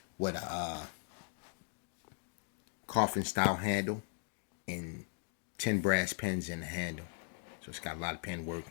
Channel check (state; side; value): silent; right; 52 dB below the other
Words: with a coffin style handle and 10 brass pins in the handle. So it's got a lot of pen work